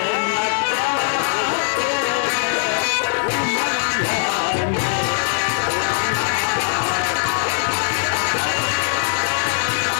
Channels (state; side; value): silent; right; digital silence